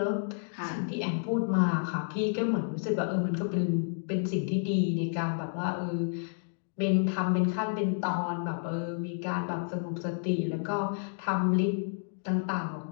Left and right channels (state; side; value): silent; right; digital silence